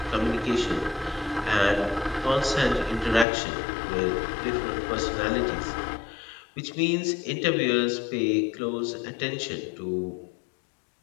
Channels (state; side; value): drops out; right; at 3.2 s